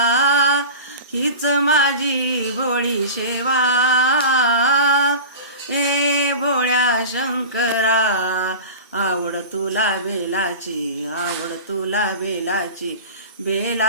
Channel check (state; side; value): inverted; both; correlation -0.33